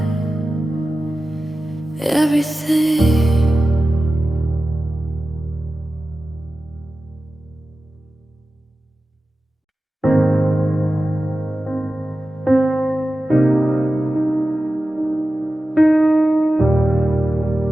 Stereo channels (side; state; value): both; normal; correlation 0.94